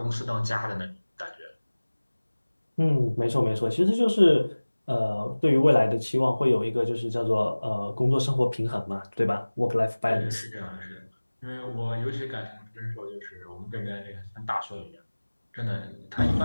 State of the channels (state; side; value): inverted; both; correlation -1.00